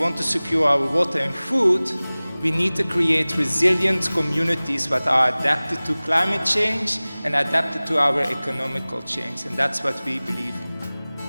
to secure our water and food, we need to create resilient communities that are adapted to climate change and adapted to our economical change, and that's what we believe in.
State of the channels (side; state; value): both; inverted; correlation -0.99